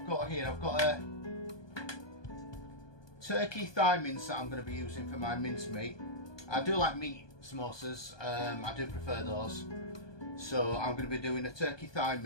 got here. I've got a turkey thigh mince that I'm going to be using for my mince meat. I do like meat samosas, I do prefer those. So I'm going to be doing a turkey thigh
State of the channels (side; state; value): right; late; 1.2 ms